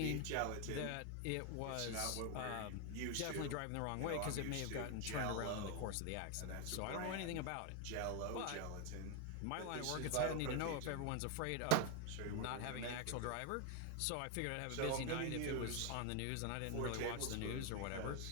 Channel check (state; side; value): different; both; correlation 0.01